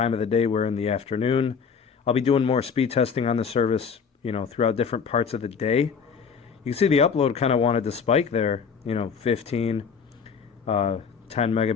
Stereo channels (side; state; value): right; quieter; 6.2 dB